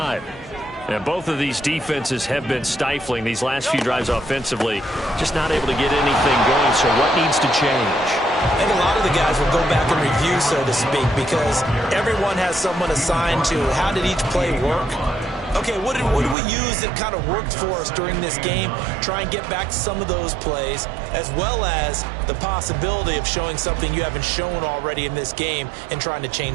And both of these defenses have been stifling these last few drives offensively. Just not able to get anything going, so what needs to change? I think a lot of the guys will go back and review, so to speak, because everyone has someone assigned to how did each play work. Okay, what did we use that kind of worked for us during this game? Try and get back to some of those plays, as well as the possibility of showing something you haven't shown already in this game and trying to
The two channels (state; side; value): drops out; left; at 16.4 s